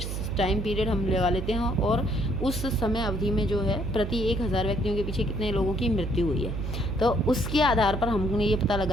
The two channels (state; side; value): noise; right; hum, 4 dB below the sound